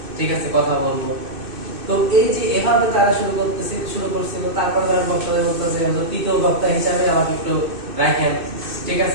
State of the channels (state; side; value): late; left; 2.6 ms